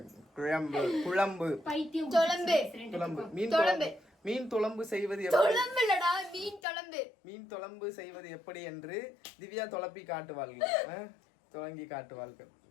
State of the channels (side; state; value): right; drops out; at 6.6 s